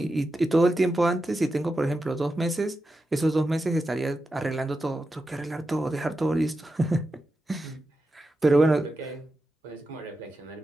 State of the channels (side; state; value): both; normal; correlation 0.90